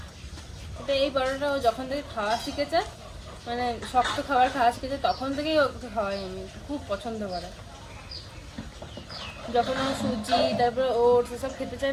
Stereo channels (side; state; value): both; identical; correlation 1.00